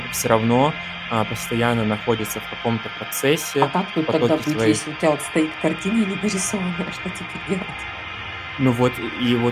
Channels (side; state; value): both; identical; correlation 1.00